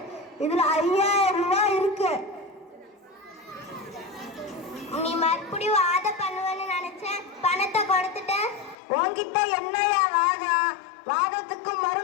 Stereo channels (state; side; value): drops out; right; at 8.8 s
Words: இதுல 5000 ரூபாய் இருக்கு. நீ மறுபடியும் வாத பண்ணுவேன்னு நினைச்சேன், பணத்தை கொடுத்துட்ட. உன்கிட்ட என்னையா வாதம்? வாதத்துக்கு